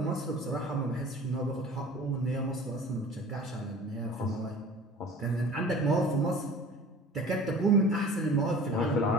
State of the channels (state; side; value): normal; both; correlation 0.43